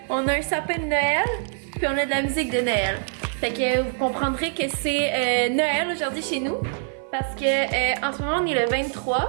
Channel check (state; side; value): silent; left; 56 dB below the other